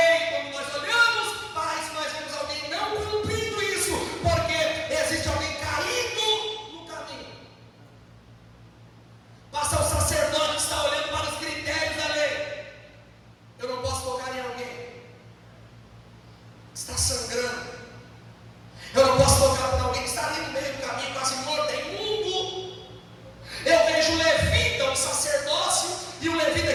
Quando nós olhamos para isso, nós vemos alguém não cumprindo isso, porque existe alguém caído no caminho. Passa o sacerdote que está olhando para os critérios da lei. Eu não posso tocar em alguém está sangrando. Eu não posso tocar para alguém que está ali no meio do caminho.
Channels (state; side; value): identical; both; correlation 1.00